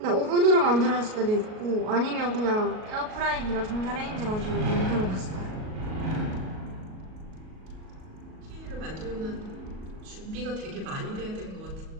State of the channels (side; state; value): left; late; 38 ms